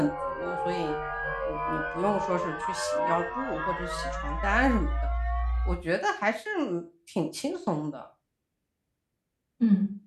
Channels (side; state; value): both; identical; correlation 1.00